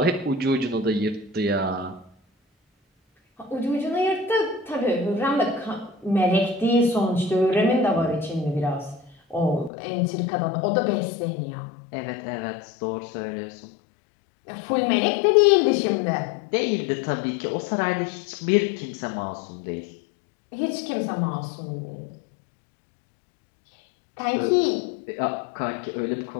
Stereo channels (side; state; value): right; drops out; at 9.7 s